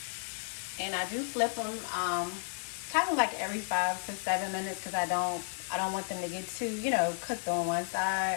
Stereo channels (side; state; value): right; silent; 56 dB below the other